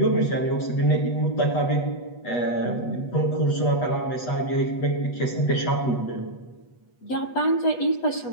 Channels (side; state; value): right; late; 8.2 ms